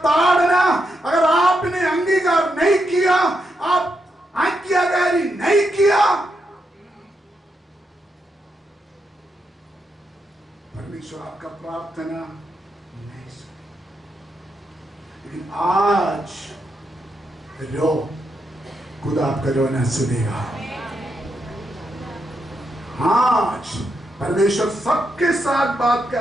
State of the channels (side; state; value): both; normal; correlation 0.83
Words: अगर आपने अंगीकार नहीं किया, आप आज्ञाकारी नहीं किया, परमेश्वर आपका प्रार्थना नहीं सुना। लेकिन आज रो, खुदा आपका रोना सुनेगा। आज परमेश्वर सबके साथ बात